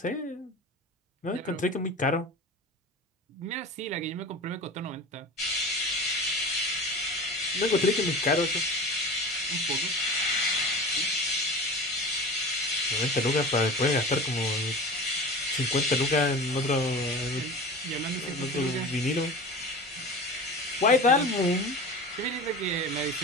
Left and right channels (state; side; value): normal; both; correlation 0.34